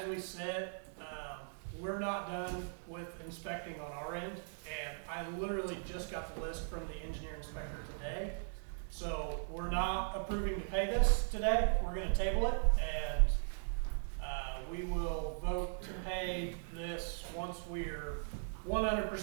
we sit, we're not done with inspecting on our end, and I literally just got the list from the engineer inspector today. So we're not approving to pay this today. We're gonna table it, and we will vote to pay this once we're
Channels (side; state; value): left; silent; 52 dB below the other